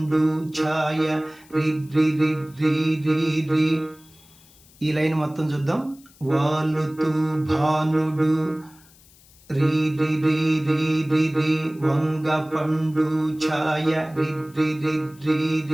ఛాయ రి రి రి రి రి రి. ఈ లైన్ మొత్తం చూద్దాం. వాలుతూ భానుడు రి రి రి రి రి రి వంగ పండు ఛాయ రి రి రి రి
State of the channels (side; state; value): left; noise; hiss, 27 dB below the sound